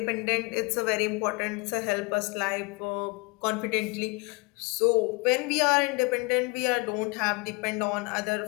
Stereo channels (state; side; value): quieter; right; 27.7 dB